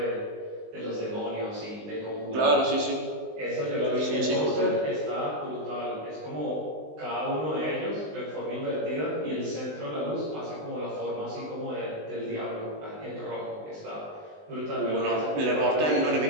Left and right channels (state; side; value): late; left; 19 ms